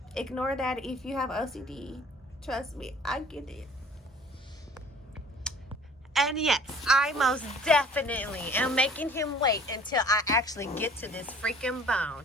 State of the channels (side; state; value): both; normal; correlation 0.50